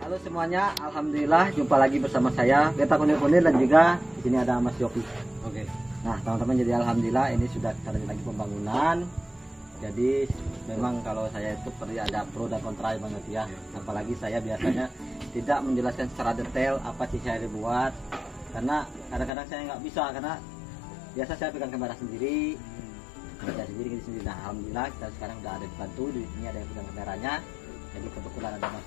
Halo semuanya, alhamdulillah jumpa lagi bersama saya Beta Kunir-Kunir dan juga di sini ada Mas Yopi. Oke. Nah teman-teman, jadi alhamdulillah ini sudah kita lanjut lagi pembangunan. Jadi memang kalau saya itu perlu ada pro dan kontra banget ya. Apalagi saya biasanya tidak menjelaskan secara detail apa sih saya dibuat, karena kadang-kadang saya nggak bisa, karena biasa saya pegang kamera sendiri, kerja sendiri sendiri. Nah alhamdulillah kita sekarang udah ada dibantu, di sini ada yang pegang kameranya. Jadi kebetulan ada Mas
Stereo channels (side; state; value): right; drops out; at 19.3 s